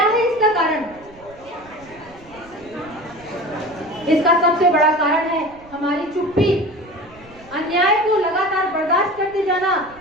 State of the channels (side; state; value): right; noise; rumble, 24 dB below the sound